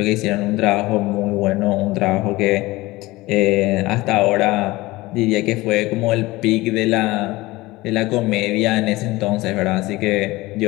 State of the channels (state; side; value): quieter; right; 20.1 dB